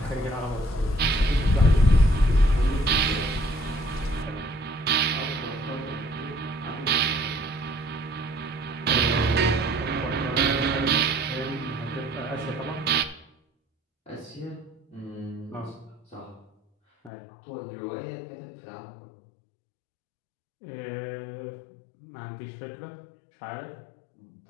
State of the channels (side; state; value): right; drops out; at 17.1 s